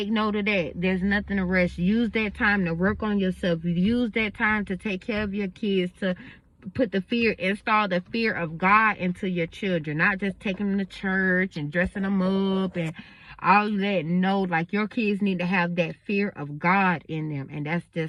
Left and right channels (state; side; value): identical; both; correlation 1.00